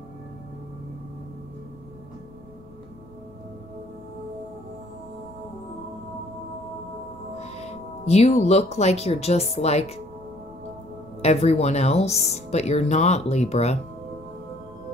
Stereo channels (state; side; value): noise; left; rumble, 26 dB below the sound